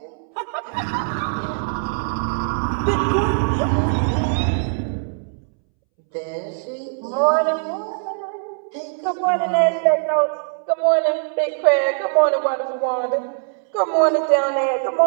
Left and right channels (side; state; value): left; silent; 65 dB below the other